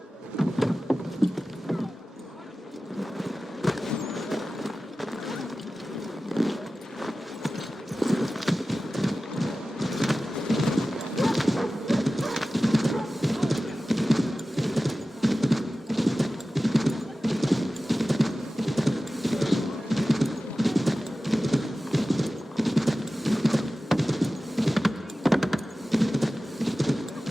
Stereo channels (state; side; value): normal; both; correlation 0.95